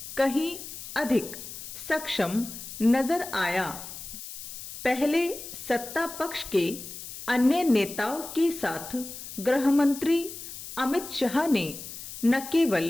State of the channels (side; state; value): left; noise; hiss, 11 dB below the sound